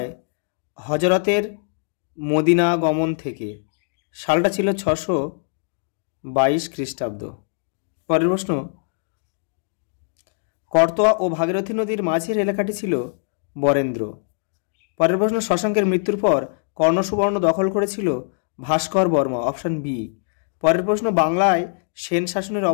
হজরতের মদিনা গমন থেকে। সালটা ছিল 622 খ্রিস্টাব্দ। পরের প্রশ্ন, করতোয়া ও ভাগীরথী নদীর মাঝের এলাকাটি ছিল বরেন্দ্র। পরের প্রশ্ন, শশাঙ্কের মৃত্যুর পর কর্ণসুবর্ণ দখল করেছিল ভাস্কর বর্মা, অপশান বি। পরের প্রশ্ন, বাংলায় সেন শাসনের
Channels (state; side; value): silent; right; digital silence